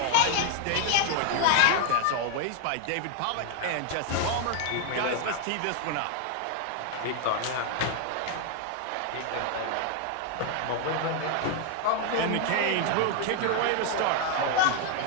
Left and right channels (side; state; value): both; different; correlation 0.00